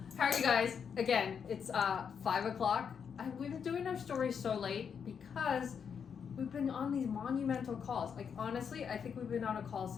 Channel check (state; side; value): quieter; right; 7.0 dB